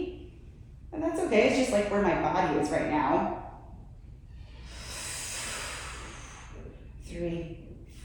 and that's okay. It's just like where my body is right now. 3,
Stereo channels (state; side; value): identical; both; correlation 1.00